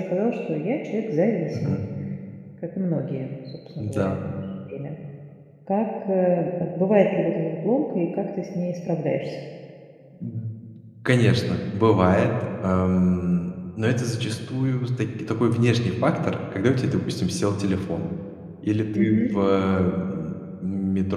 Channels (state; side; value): identical; both; correlation 1.00